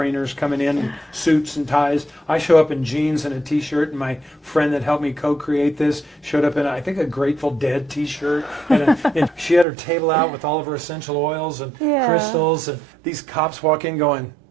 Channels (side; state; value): left; drops out; at 9.7 s